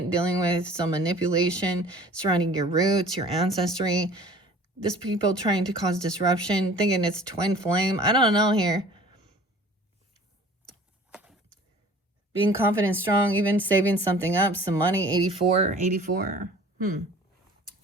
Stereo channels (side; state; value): both; normal; correlation 0.47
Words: dealing with some manipulation surrounding your roots, your ancestry. This people trying to cause disruption, thinking it's twin flame. I don't know here. Being confident, strong, even saving something up, some money. 84.